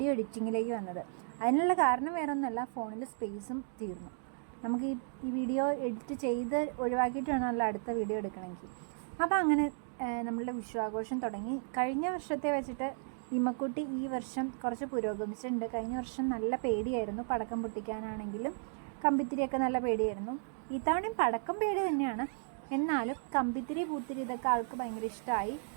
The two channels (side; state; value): left; silent; digital silence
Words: എഡിറ്റിങ്ങിലേക്ക് വന്നത്. അതിനുള്ള കാരണം വേറെ ഒന്നുമല്ല, ഫോണിൽ സ്പേസും തീർന്നു. നമുക്ക് ഈ വീഡിയോ എഡിറ്റ് ചെയ്ത് ഒഴിവാക്കിയിട്ട് വേണമല്ലോ അടുത്ത വീഡിയോ എടുക്കണമെങ്കിൽ. അപ്പോൾ അങ്ങനെ നമ്മളുടെ വിഷുവാഘോഷം തുടങ്ങി. കഴിഞ്ഞ വർഷത്തെ വെച്ചിട്ട് ഇമ്മക്കുട്ടി ഈ വർഷം കുറച്ച് പുരോഗമിച്ചിട്ടുണ്ട്. കഴിഞ്ഞ വർഷം നല്ല പേടിയായിരുന്നു, പടക്കം പൊട്ടിക്കാനാണെങ്കിലും കമ്പിത്തിരിയൊക്കെ നല്ല പേടിയായിരുന്നു. ഇത്തവണയും പടക്കം പേടി തന്നെയാണ്, എന്നാലും കമ്പിത്തിരി പൂത്തിരി ഇതൊക്കെ ആൾക്ക് ഭയങ്കര ഇഷ്ടമായി.